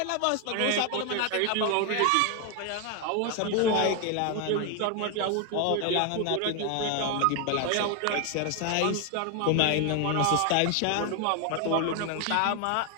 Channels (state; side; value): different; both; correlation 0.01